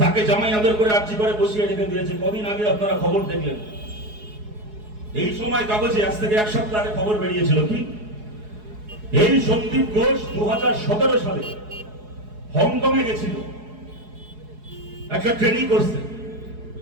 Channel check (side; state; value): left; late; 4.7 ms